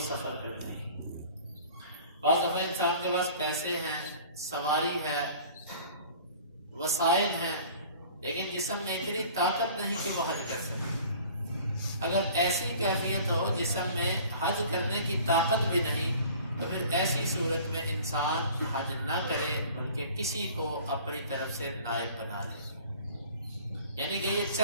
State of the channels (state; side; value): inverted; both; correlation -0.47